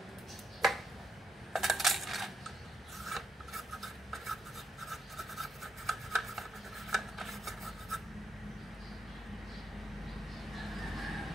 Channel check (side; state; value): both; normal; correlation 0.80